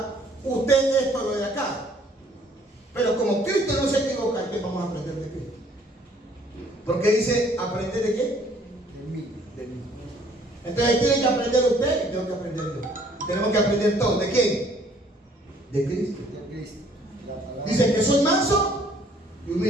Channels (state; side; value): normal; both; correlation 0.60